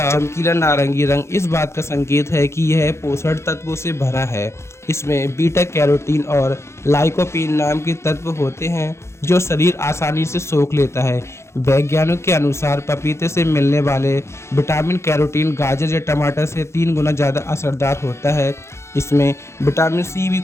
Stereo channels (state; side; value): late; right; 0.13 ms